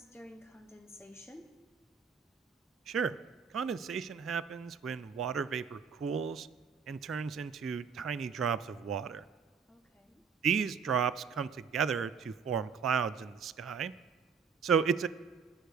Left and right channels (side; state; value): left; quieter; 6.4 dB